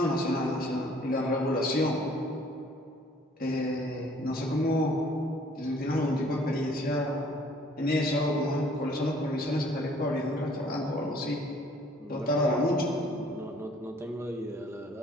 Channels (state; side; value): normal; both; correlation 0.58